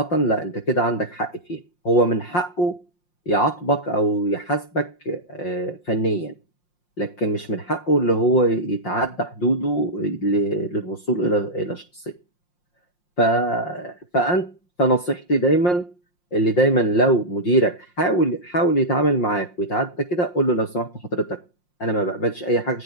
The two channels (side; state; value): right; late; 5.6 ms